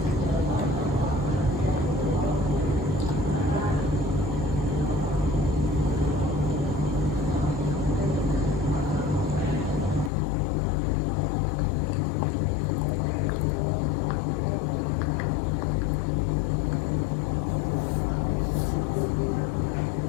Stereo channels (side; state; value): right; drops out; at 10.1 s